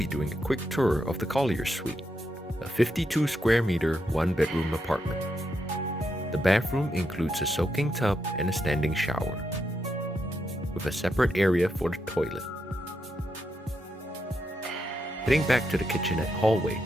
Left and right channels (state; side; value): normal; both; correlation 0.82